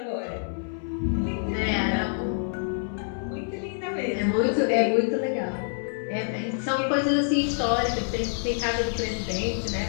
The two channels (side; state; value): right; silent; 60 dB below the other